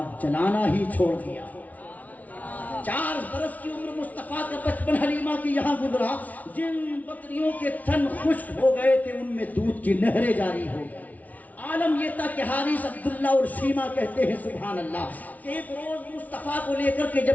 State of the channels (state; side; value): late; right; 0.072 ms